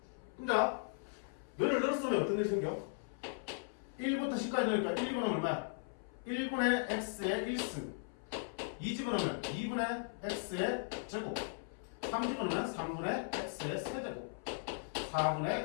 자, 너를 늘었으면 어떤 일이 생겨? 1부터 10까지 넣으니까 1분은 얼마야? 1분의 x의 1승. 2집어넣으면 2분의 x의 제곱. 3집어넣으면 3분의 x의 세제곱. 4분의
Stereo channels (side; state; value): right; silent; 53 dB below the other